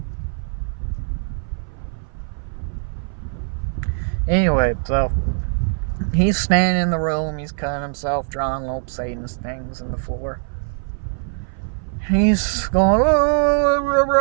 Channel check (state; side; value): silent; left; 57 dB below the other